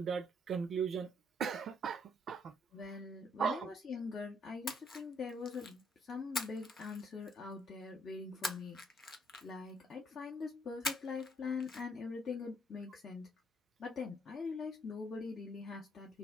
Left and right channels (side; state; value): both; normal; correlation 0.68